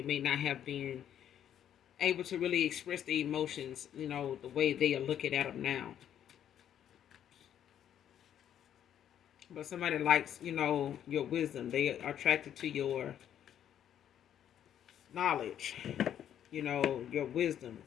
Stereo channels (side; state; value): right; quieter; 10.1 dB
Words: may not have been able to really express the emotions, the way they are looking at them now. But somebody likes, your wisdom. They are attracted to your knowledge, your wisdom,